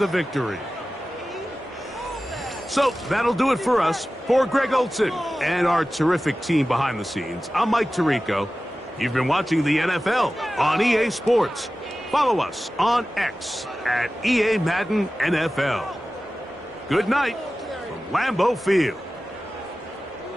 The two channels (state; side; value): normal; both; correlation 0.95